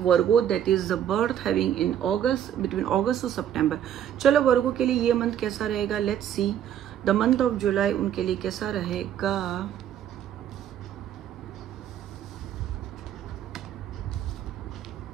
that is the birth having in August, between August to September. चलो वर्गो के लिए ये मंथ कैसा रहेगा, let's see the month of जुलाई उनके लिए कैसा रहेगा।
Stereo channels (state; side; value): quieter; left; 10.1 dB